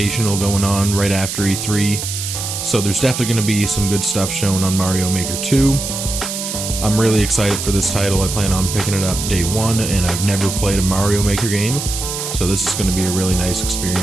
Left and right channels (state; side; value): noise; right; hiss, 5 dB below the sound